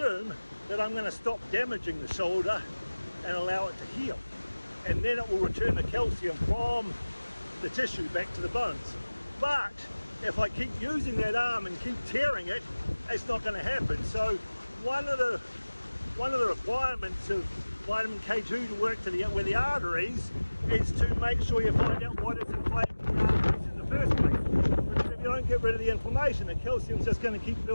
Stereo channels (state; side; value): inverted; both; correlation -1.00